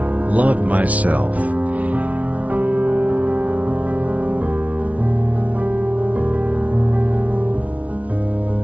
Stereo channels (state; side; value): late; left; 0.068 ms